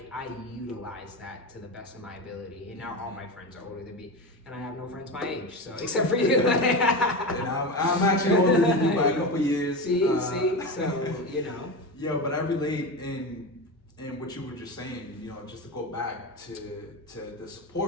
utilize that to the best of my ability. And now all my friends are older than me, and I have no friends my age, so except for you. And I'm actually older than you by a couple years. See, so Yo, but I relate in what you were just saying, just to go back to the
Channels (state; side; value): normal; both; correlation 0.22